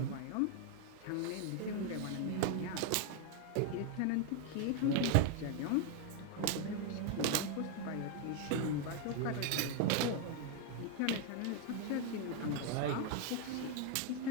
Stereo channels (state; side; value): different; both; correlation 0.01